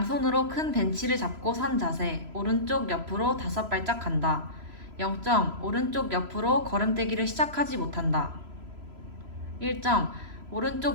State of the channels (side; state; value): left; late; 3.0 ms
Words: 큰 벤치를 잡고 선 자세. 오른쪽 옆으로 5발짝 간다. 0점. 오른쪽 옆으로 걸음떼기를 시작하지 못한다. 1점.